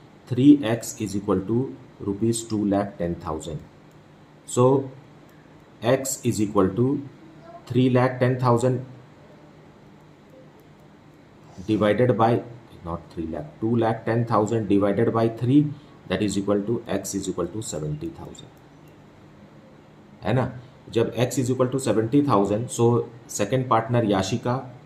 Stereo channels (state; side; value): identical; both; correlation 1.00